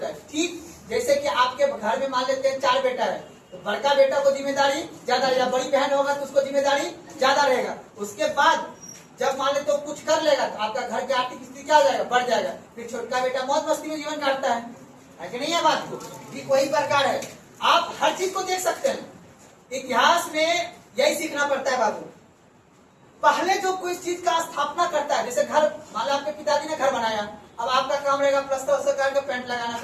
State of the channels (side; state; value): both; identical; correlation 1.00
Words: है, ठीक जैसे कि आपके घर में मान लेते हैं 4 बेटा है, तो बड़का बेटा को जिम्मेदारी ज्यादा रहेगा, बड़ी बहन होगा तो उसको जिम्मेदारी ज्यादा रहेगा। उसके बाद जब मान लेते तो कुछ कर लेगा तो आपका घर की आर्थिक स्थिति क्या हो जाएगा? बढ़ जाएगा। फिर छोटका बेटा मौज मस्ती में जीवन काटता है कि नहीं है? बात को ठीक वही प्रकार है। आप हर चीज को देख सकते हैं। इतिहास में यही सीखना पड़ता है बाबू। पहले जो कोई चीज का स्थापना करता है, जैसे घर, मान लो आपके पिताजी ने घर बनाया, अब आपका काम रहेगा प्लास्टर का पेंट लगाना,